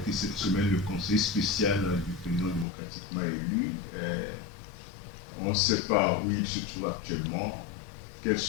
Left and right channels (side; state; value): right; drops out; at 2.7 s